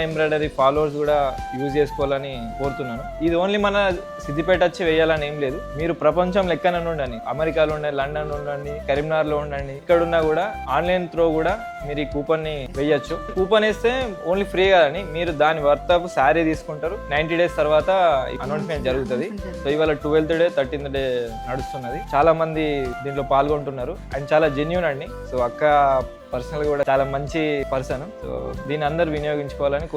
ఎంబ్రాయిడరీ ఫాలోవర్స్ కూడా యూజ్ చేసుకోవాలని కోరుతున్నాను. ఇది ఓన్లీ మన సిద్దిపేట వచ్చి వేయాలని ఏం లేదు. మీరు ప్రపంచం లెక్కన ఉండండి, అమెరికాలో ఉండండి, లండన్ ఉండండి, కరీంనగర్లో ఉండండి, ఇక్కడున్నా కూడా ఆన్లైన్ త్రో కూడా మీరు ఈ కూపన్ ని వేయచ్చు. కూపన్ వేస్తే ఓన్లీ ఫ్రీ కదండి, మీరు దాని వర్త్ ఆఫ్ శారీ తీసుకుంటారు. 90 days తర్వాత అనౌన్స్మెంట్ జరుగుతుంది. సో ఇవాళ 12th డే 13th డే నడుస్తున్నది. చాలా మంది దీంట్లో పాల్గొంటున్నారు అండ్ చాలా జెన్యూన్ అండి. సో అక్క పర్సనల్ కూడా చాలా మంచి పర్సన్. సో దీన్ని అందరు వినియోగించుకోవాలని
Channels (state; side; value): identical; both; correlation 1.00